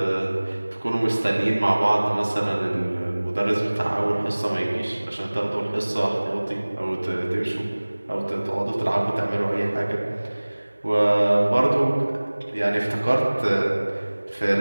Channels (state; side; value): inverted; both; correlation -1.00